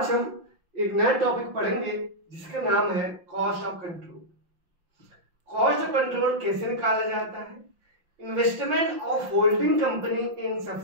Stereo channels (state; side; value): late; left; 5.7 ms